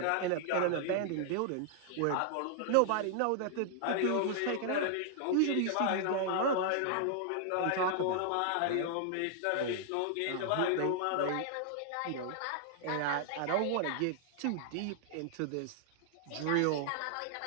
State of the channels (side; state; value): both; different; correlation -0.01